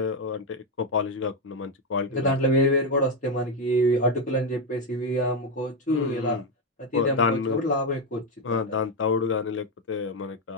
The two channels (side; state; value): both; normal; correlation 0.06